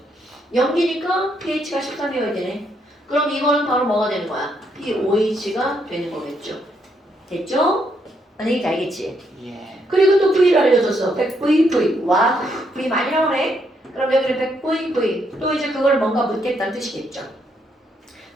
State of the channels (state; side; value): normal; both; correlation 0.75